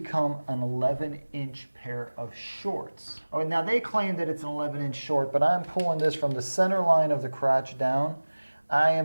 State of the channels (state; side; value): inverted; both; correlation -1.00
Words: an 11-inch pair of shorts. Oh, now they claim that it's an 11-inch short, but I'm pulling this from the center line of the crotch down. I